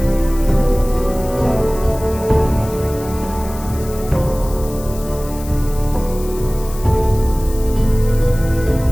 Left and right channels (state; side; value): noise; left; hiss, 16 dB below the sound